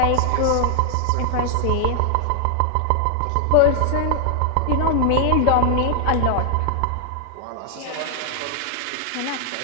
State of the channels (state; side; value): different; both; correlation 0.00